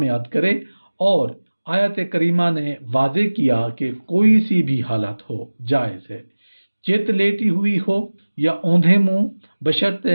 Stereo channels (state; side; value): inverted; both; correlation -1.00